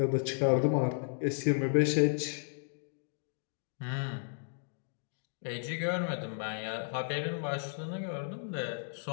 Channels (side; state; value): right; silent; digital silence